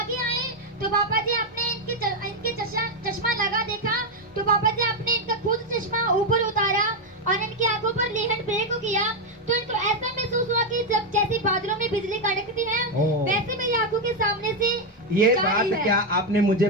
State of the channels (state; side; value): normal; both; correlation 0.04